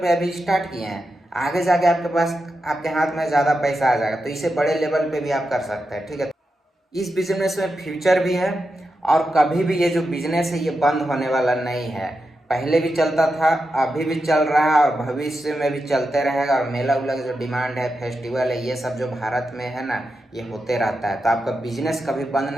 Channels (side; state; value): both; normal; correlation 0.88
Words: अभी स्टार्ट किए हैं, आगे जाके आपके पास आपके हाथ में ज़्यादा पैसा आ जाएगा, तो इसे बड़े लेवल पे भी आप कर सकते हैं। ठीक है, इस बिजनेस में फ्यूचर भी है और कभी भी ये जो बिजनेस है ये बंद होने वाला नहीं है। पहले भी चलता था, अभी भी चल रहा है और भविष्य में भी चलते रहेगा। और मेला उला जो डिमांड है, फेस्टिवल है, ये सब जो भारत में है ना, ये होते रहता है। तो आपका बिजनेस कभी बंद